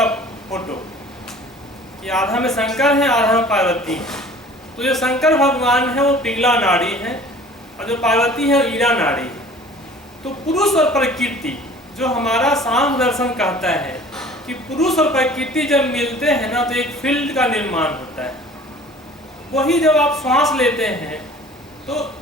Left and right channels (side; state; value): both; normal; correlation 0.47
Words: फोटो, कि आधा में शंकर है, आधा में पार्वती है। तो जो शंकर भगवान है वो पिंगला नाड़ी है और जो पार्वती है वो ईडा नाड़ी है। तो पुरुष और प्रकृति, जो हमारा सांख्य दर्शन कहता है कि पुरुष और प्रकृति जब मिलते हैं ना, तो एक फील्ड का निर्माण होता है। वही जब आप श्वास लेते हैं, तो